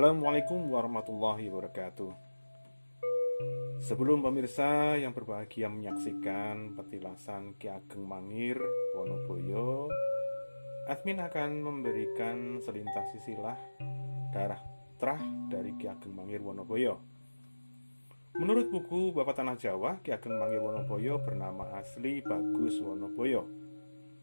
warahmatullahi wabarakatuh. Sebelum pemirsa yang berbahagia menyaksikan petilasan Ki Ageng Mangir Wonoboyo, admin akan memberikan selintas silsilah darah terah dari Ki Ageng Mangir Wonoboyo. Menurut buku Bapak Tanah Jawa, Ki Ageng Mangir Wonoboyo bernama asli Bagus Wonoboyo.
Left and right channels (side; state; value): both; inverted; correlation -1.00